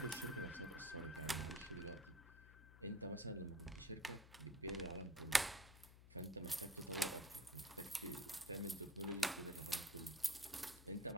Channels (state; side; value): noise; left; hum, 17 dB below the sound